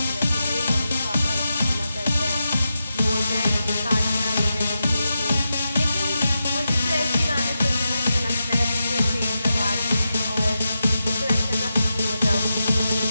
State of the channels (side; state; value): both; inverted; correlation -0.89